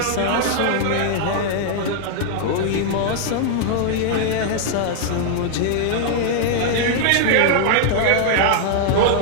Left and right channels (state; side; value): different; both; correlation -0.01